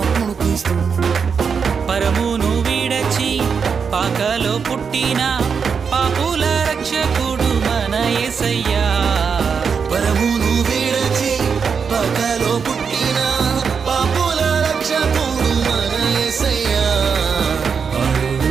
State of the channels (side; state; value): left; quieter; 6.1 dB